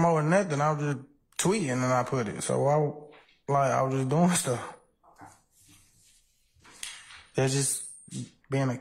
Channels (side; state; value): both; identical; correlation 1.00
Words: nothing, I was just tweeting and I put it. So I was just doing stuff. Okay. It's just being a